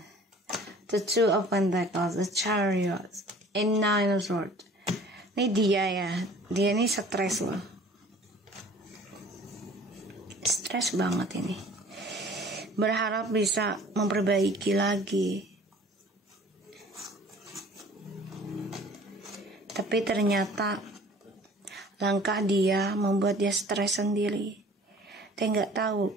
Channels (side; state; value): both; normal; correlation 0.49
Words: the Two of Pentacles, the Chariot, and Nine of Swords. Ini dia, ya, dia ini stres loh, stres banget ini. Berharap bisa memperbaiki lagi, tapi ternyata langkah dia membuat dia stres sendiri. Dia nggak